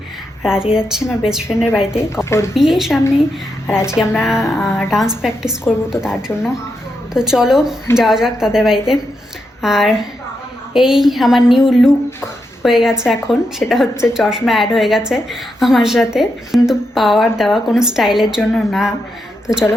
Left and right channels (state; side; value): normal; both; correlation 0.84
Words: আর আজকে যাচ্ছি আমার বেস্ট ফ্রেন্ডের বাড়িতে, ওর বিয়ের সামনে। আর আজকে আমরা ডান্স প্র্যাকটিস করব, তো তার জন্য তো চলো যাওয়া যাক তাদের বাড়িতে। আর এই আমার নিউ লুক হয়ে গেছে এখন, সেটা হচ্ছে চশমা অ্যাড হয়ে গেছে আমার সাথে, কিন্তু পাওয়ার দেওয়া কোনো স্টাইলের জন্য না। তো চলো